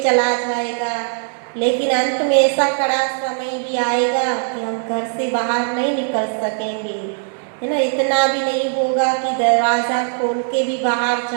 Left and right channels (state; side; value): silent; left; digital silence